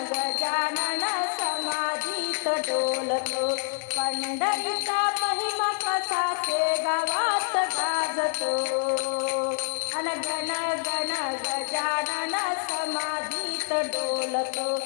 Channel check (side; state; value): right; silent; 60 dB below the other